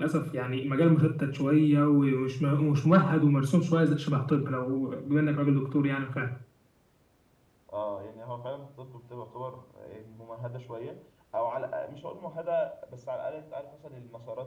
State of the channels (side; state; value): both; identical; correlation 1.00